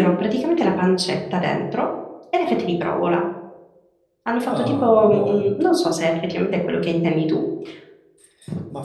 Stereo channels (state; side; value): identical; both; correlation 1.00